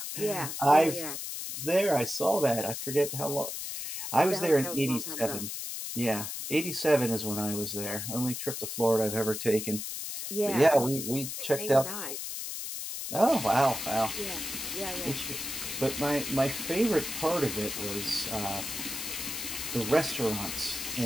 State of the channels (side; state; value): left; noise; hiss, 5 dB below the sound